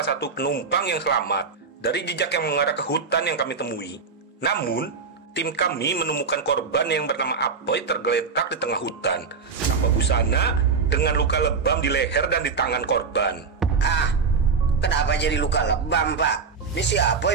satu penumpang yang selamat dari jejak yang mengarah ke hutan yang kami temui. Namun, tim kami menemukan korban yang bernama Apoy tergeletak di tengah hutan tanpa busana dengan luka lebam di leher dan di tangan korban. Ah, kenapa jadi luka lebam Pak? Ini si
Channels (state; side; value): quieter; left; 5.1 dB